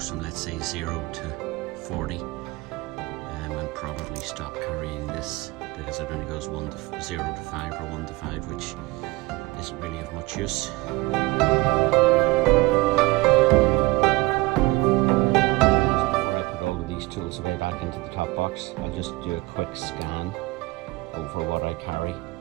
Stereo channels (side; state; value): left; quieter; 21.9 dB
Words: from, let's say, 0 to 40, and probably stop carrying this because it only goes 0 to 5 or 1 to 5, which isn't really of much use. Before I put all of these tools away back into the top box, I'll just do a quick scan over what I carry.